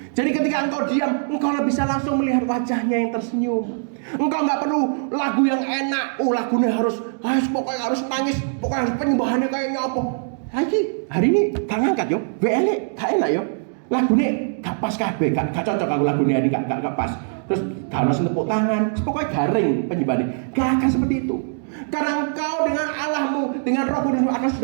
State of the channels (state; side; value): silent; left; digital silence